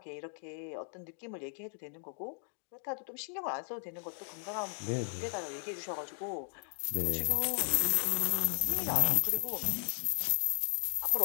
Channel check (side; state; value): right; silent; 54 dB below the other